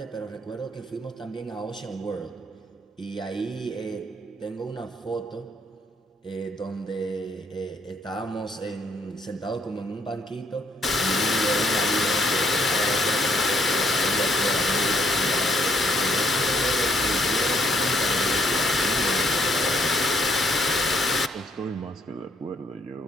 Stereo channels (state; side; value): normal; both; correlation 0.69